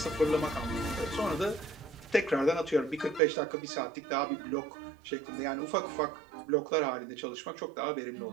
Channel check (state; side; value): drops out; left; at 3.2 s